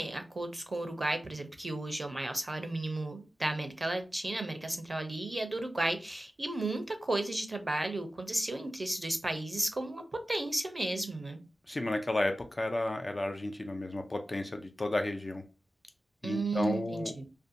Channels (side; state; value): both; normal; correlation 0.94